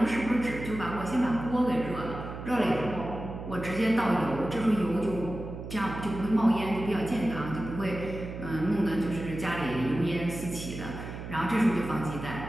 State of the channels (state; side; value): noise; right; hum, 9 dB below the sound